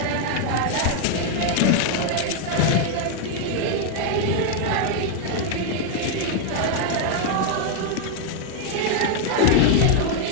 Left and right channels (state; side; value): different; both; correlation 0.00